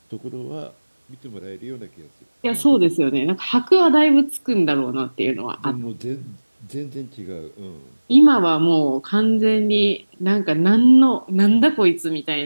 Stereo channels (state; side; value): inverted; both; correlation -1.00